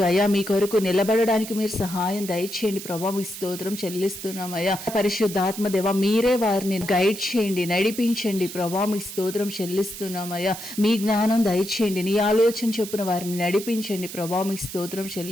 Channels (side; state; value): right; noise; hiss, 11 dB below the sound